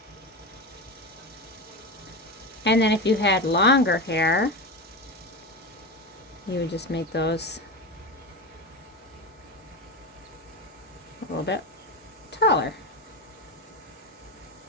And then if you had longer hair, you would just make those a little bit taller.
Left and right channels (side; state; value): both; normal; correlation 0.20